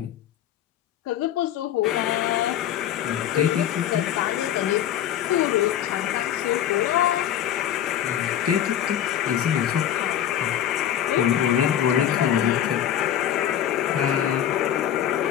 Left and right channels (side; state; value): right; quieter; 10.6 dB